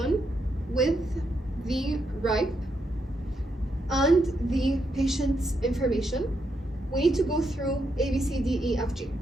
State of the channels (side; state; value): both; normal; correlation 0.80